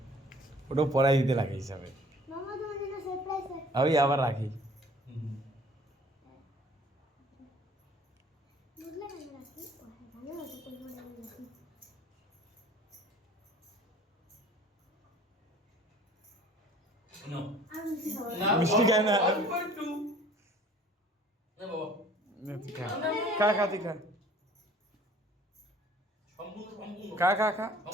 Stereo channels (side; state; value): both; normal; correlation 0.52